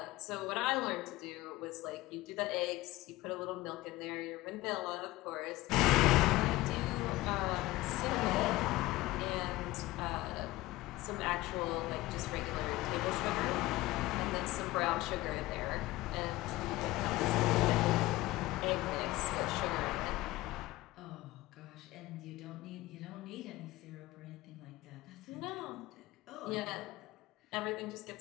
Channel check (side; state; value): right; quieter; 18.3 dB